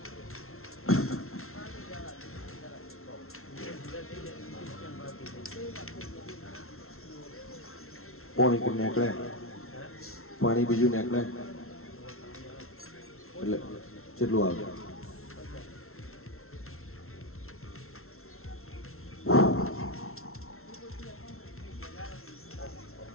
પાણી નીકળે, પાણી બીજું નીકળે એટલે કેટલું આવે?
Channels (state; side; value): late; right; 0.62 ms